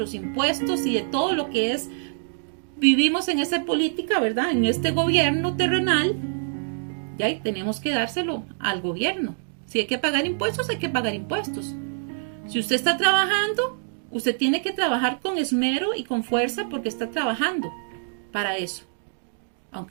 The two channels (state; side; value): silent; left; digital silence